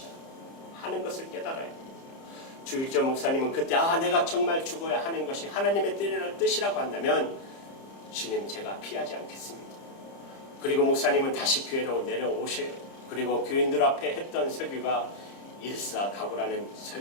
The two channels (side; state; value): right; late; 30 ms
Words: 하는 것을 깨달아요. 주일전 목사님은 그때 내가 정말 죽어야 하는 것이 하나님의 뜻이라고 한다면 주님 제가 피하지 않겠습니다. 그리고 목사님은 다시 교회로 내려오셔요. 그리고 교인들 앞에 했던 설교가 일사각오라는